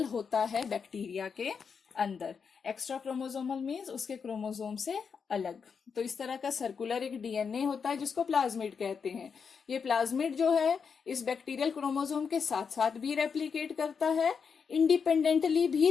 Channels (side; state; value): right; quieter; 6.1 dB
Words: होता है बैक्टीरिया के अंदर. एक्स्ट्रा क्रोमोसोमल मीन्स उसके क्रोमोसोम से अलग. तो इस तरह का सर्कुलर एक डीएनए होता है जिसको प्लाज्मिड कहते हैं. ये प्लाज्मिड जो है इस बैक्टीरियल क्रोमोसोम के साथ साथ भी रेप्लिकेट करता है, इंडिपेंडेंटली भी